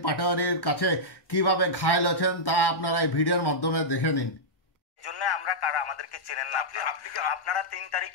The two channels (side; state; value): right; late; 1.1 ms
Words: পাটোয়ারির কাছে কিভাবে ঘায়েল হয়েছেন তা আপনারা এই ভিডিওর মাধ্যমে দেখে নিন। জন্য আমরা কারা আমাদেরকে চেনেন না। আপনারা ৩